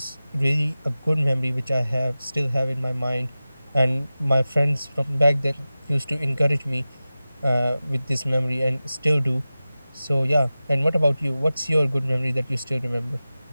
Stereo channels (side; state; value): both; inverted; correlation -0.96